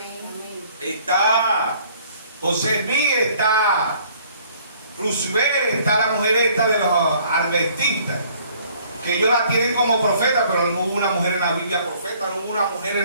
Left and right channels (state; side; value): inverted; both; correlation -0.58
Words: Está José Smith, está Roosevelt, está la mujer esta de los adventistas, que ellos la tienen como profeta, pero no hubo una mujer en la Biblia profeta, no hubo una mujer en